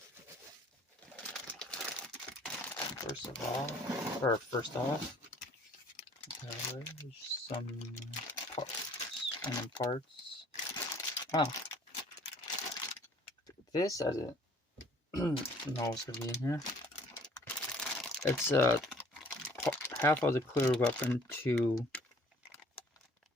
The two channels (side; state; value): both; normal; correlation 0.56